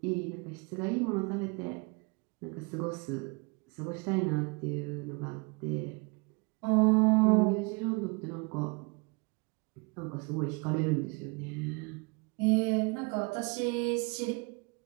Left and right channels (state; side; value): quieter; left; 30.6 dB